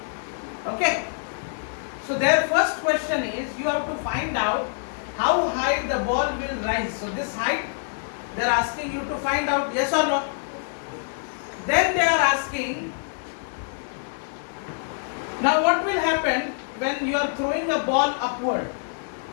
Okay. So their first question is, you have to find out how high the ball will rise. So this height, they are asking you to find out, yes or no. Then they are asking, now what will happen when you are throwing a ball upward?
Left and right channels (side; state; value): right; silent; digital silence